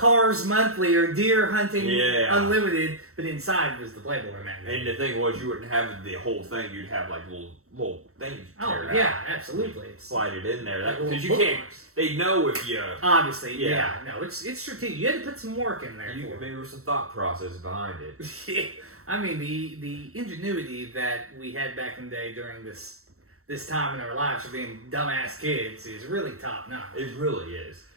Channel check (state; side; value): late; left; 0.63 ms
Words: Monthly or Deer Hunting Unlimited, but inside was the Playboy magazine. And the thing was, you wouldn't have the whole thing. You'd have like little things. Oh yeah, absolutely. Slide it in there because you can't. They know if you. Obviously, yeah. No, it's strategic. You had to put some work in there. Maybe there was some thought process behind it. Yeah, I mean the ingenuity that we had back in the day during this time in our lives for being dumbass kids is really top notch. It really is,